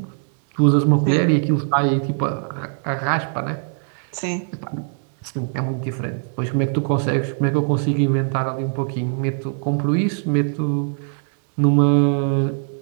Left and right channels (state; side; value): silent; left; 62 dB below the other